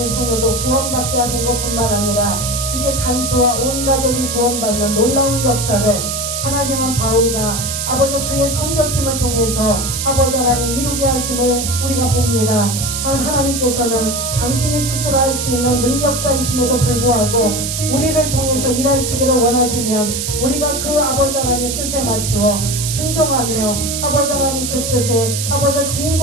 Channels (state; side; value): noise; right; hiss, 3 dB below the sound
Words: 소녀도 구원받게 하는 것뿐만 아니라 이제 간수와 온 가족이 구원받는 놀라운 역사를 하나님은 바울과 아버지 그의 선교팀을 통해서 아버지 하나님 이루게 하심을 우리가 봅니다. 하나님께서는 당신이 스스로 할 수 있는 능력자이심에도 불구하고 우리를 통해서 일하시기를 원하시면 우리가 그 아버지 하나님의 뜻에 맞추어 순종하며 아버지 하나님 그 뜻에 아버지